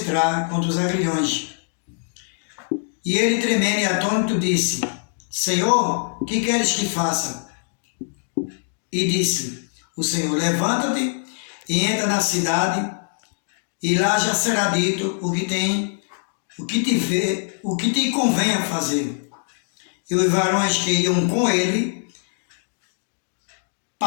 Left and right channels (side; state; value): right; silent; digital silence